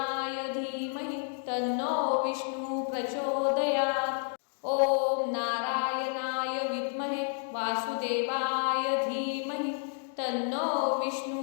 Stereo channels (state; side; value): silent; right; 57 dB below the other